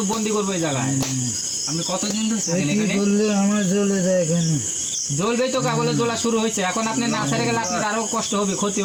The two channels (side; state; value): both; identical; correlation 1.00